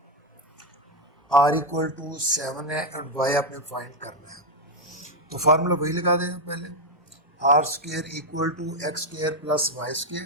आर इक्वल टू 7 है और वाई आपने फाइंड करना है। तो फार्मूला वही लगा दें पहले, r square equal to x square plus y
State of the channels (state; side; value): normal; both; correlation 0.04